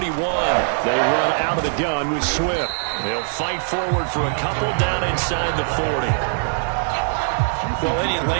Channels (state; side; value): silent; left; 61 dB below the other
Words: They run out of the gun with Swift. They'll fight forward for a couple down inside the 40. Well, any